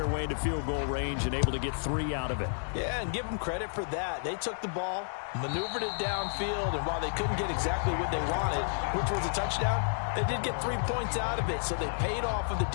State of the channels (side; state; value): right; silent; digital silence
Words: way into field goal range and able to get 3 out of it. Yeah, and give them credit for that. They took the ball, maneuvered it downfield, and while they couldn't get exactly what they wanted, which was a touchdown, they did get 3 points out of it. So they paid off what the